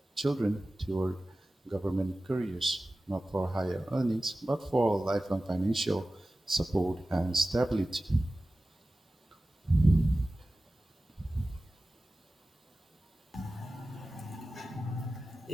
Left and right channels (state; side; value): normal; both; correlation 0.96